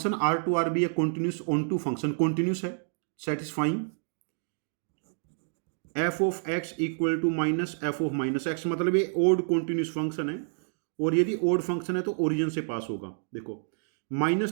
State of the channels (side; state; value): left; silent; digital silence